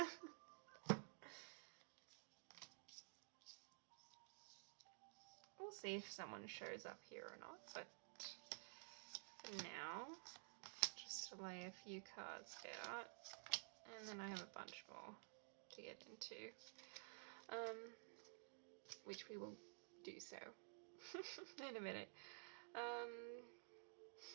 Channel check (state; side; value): silent; left; digital silence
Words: We'll see if someone shows up here or not, but for now, just to lay a few cards out, and then I have a bunch more to get into, which we will do so in a minute.